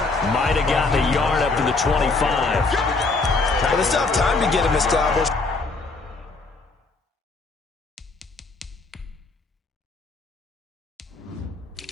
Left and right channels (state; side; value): quieter; right; 3.7 dB